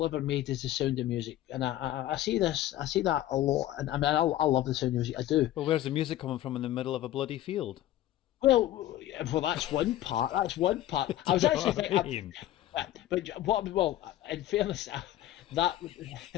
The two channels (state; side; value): quieter; right; 13.8 dB